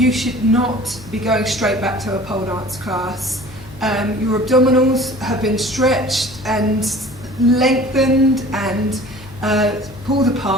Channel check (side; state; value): left; noise; hum, 18 dB below the sound